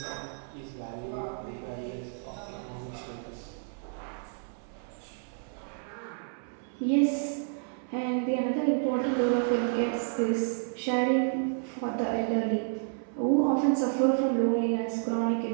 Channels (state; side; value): silent; left; 56 dB below the other